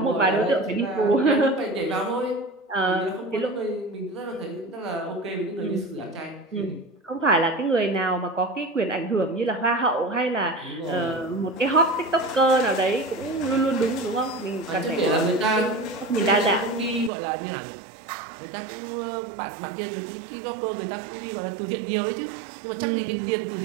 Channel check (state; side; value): drops out; left; at 17.1 s